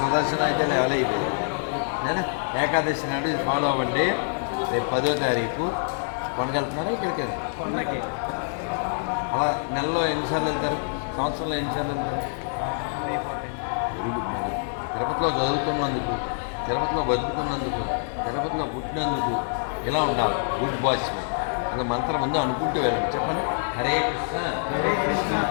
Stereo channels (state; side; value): silent; right; digital silence